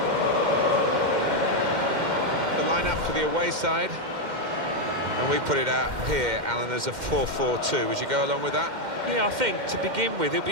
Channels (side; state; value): left; late; 2.1 ms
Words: The lineup for the away side. And we put it out here, Alan, as a 4-4-2. Would you go along with that? Yeah, I think to begin with, it'll